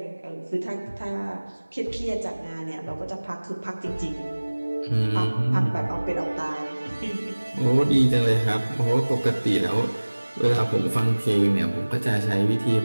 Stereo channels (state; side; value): inverted; both; correlation -1.00